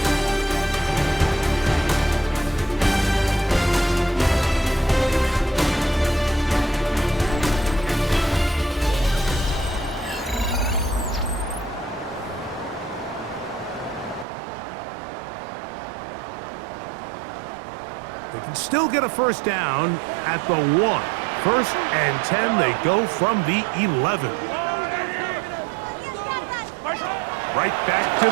They can still get a first down at the 1. First and 10, they go from the 11. Right back to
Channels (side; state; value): left; drops out; at 14.2 s